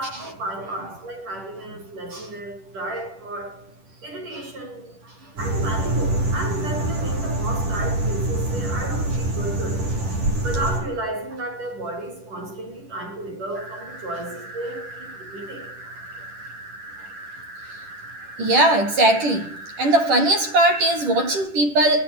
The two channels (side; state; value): left; late; 10 ms